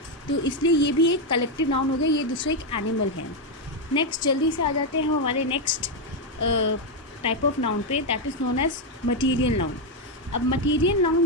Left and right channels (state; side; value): normal; both; correlation 0.04